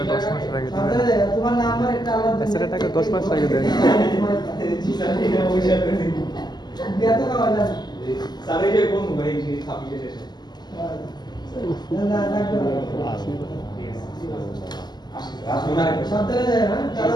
10 মাস আগে দিবেন। সাবধানে যাও, তোমার নাম্বার একটা আলাদা স্যারের টাকা 10 মাস আগে দেন। বিয়া তো খাওয়া যাবে স্যার এই যে কোন ভাই যে ছাপিয়ে শেষে না লাগবে না। সাবধানে যাও হ্যাঁ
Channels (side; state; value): right; late; 0.21 ms